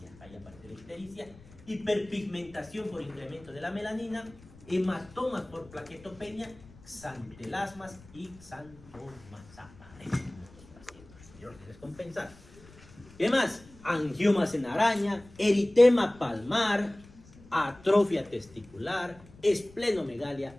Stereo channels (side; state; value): left; noise; rumble, 23 dB below the sound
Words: ahí aparece la ictericia, hiperpigmentación por incremento de la melanina, hematomas por plaquetopenia, xantelasmas y xantomas aparecen descompensar. ¿Qué más? Angiomas en araña, eritema palmar, atrofia testicular, esplenomegalia,